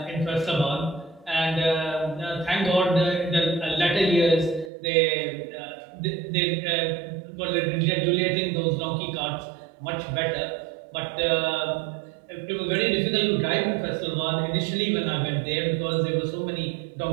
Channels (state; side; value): drops out; left; at 4.7 s